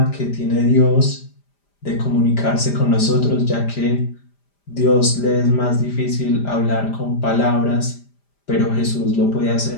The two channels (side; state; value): right; late; 5.0 ms